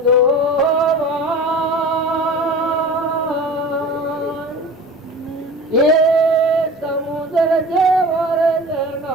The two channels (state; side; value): normal; both; correlation 0.37